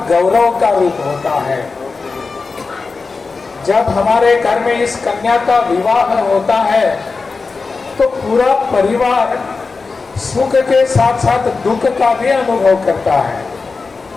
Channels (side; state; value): right; quieter; 4.3 dB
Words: गौरव का रूप होता है। जब हमारे घर में इस कन्या का विवाह होता है तो पूरा परिवार सुख के साथ साथ दुख का भी अनुभव करता है